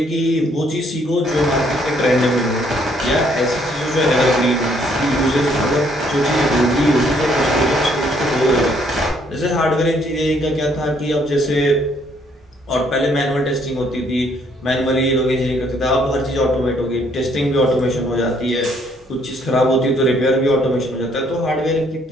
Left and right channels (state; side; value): normal; both; correlation 0.66